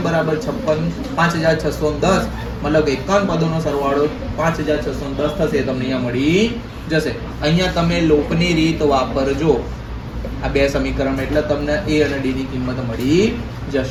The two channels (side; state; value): both; identical; correlation 1.00